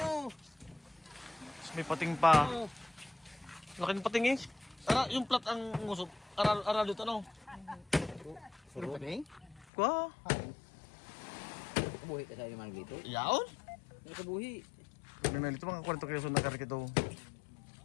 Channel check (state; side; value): drops out; right; at 9.7 s